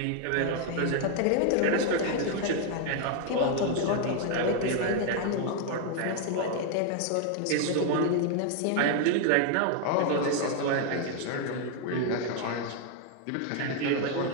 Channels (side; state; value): both; different; correlation 0.00